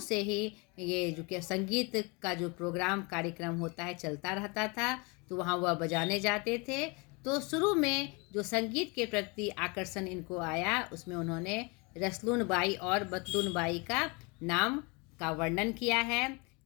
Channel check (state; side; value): quieter; right; 29.2 dB